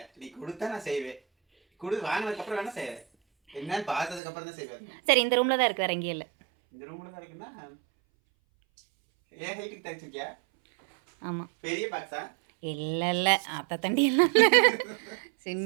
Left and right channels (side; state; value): left; drops out; at 4.2 s